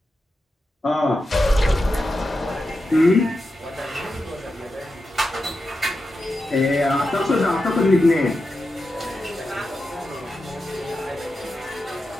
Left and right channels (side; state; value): both; normal; correlation 0.89